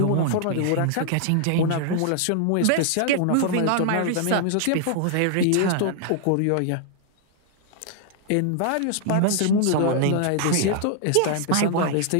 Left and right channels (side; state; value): both; different; correlation -0.01